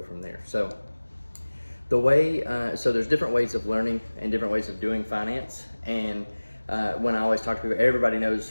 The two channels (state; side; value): inverted; both; correlation -1.00